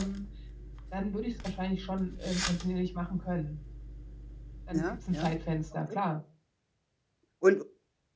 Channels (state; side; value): identical; both; correlation 1.00